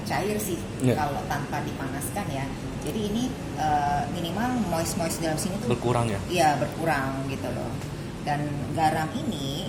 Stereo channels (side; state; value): both; identical; correlation 1.00